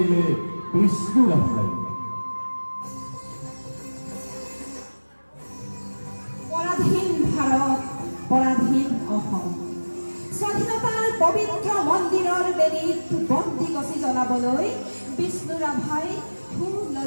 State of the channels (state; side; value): inverted; both; correlation -1.00